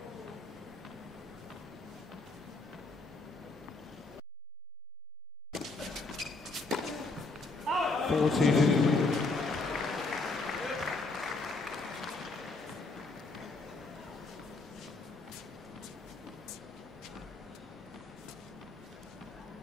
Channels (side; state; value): right; quieter; 3.4 dB